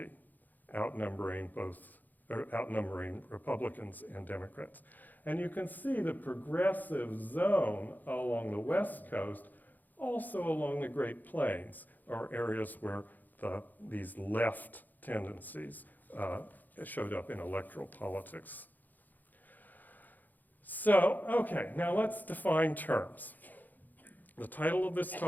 outnumbering Republicans and Democrats. And you can see the progressive zone along the West Coast, also along the Great Plains, are areas where these left tendencies showed up in electoral politics. So, okay, now let's define terms. The title of this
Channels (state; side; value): late; right; 0.084 ms